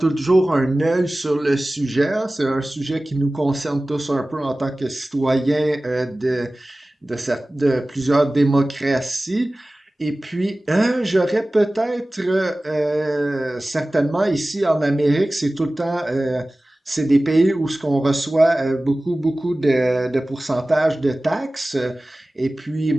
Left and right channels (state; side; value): normal; both; correlation 0.97